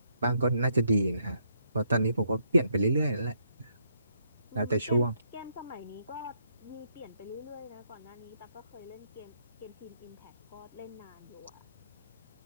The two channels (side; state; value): both; inverted; correlation -0.75